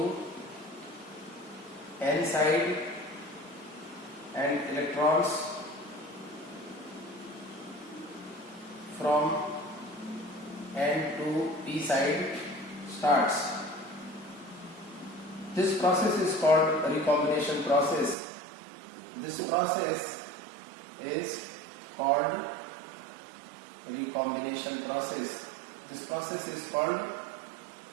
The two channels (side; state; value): left; drops out; at 18.2 s